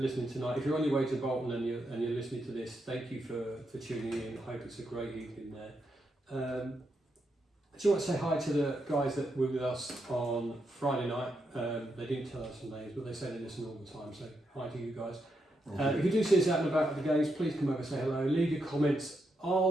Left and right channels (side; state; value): both; normal; correlation 0.82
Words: tonight. If you're on your way to Bolton and you're listening to this, thank you for tuning in. I hope it's a great evening there. Do you want to say hi to the guys that were with us on Friday night? They didn't tell us their names, but they say they listen all the time. So hi to you guys. If you do see us out and about at the games, please come over and say hello. Leave your comments